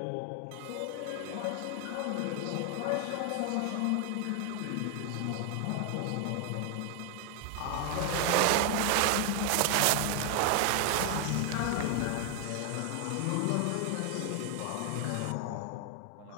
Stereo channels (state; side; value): different; both; correlation 0.00